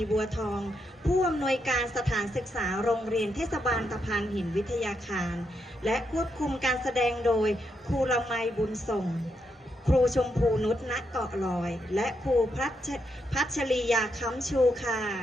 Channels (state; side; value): normal; both; correlation 0.81